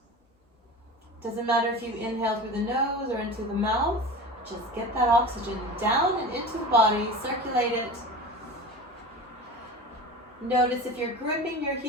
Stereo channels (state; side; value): normal; both; correlation 0.33